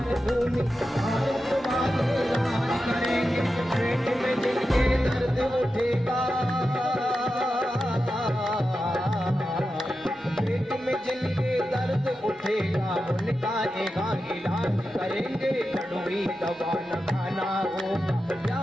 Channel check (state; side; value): normal; both; correlation 0.91